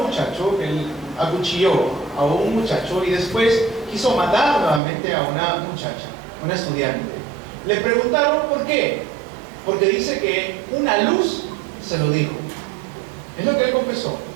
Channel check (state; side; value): drops out; left; at 4.8 s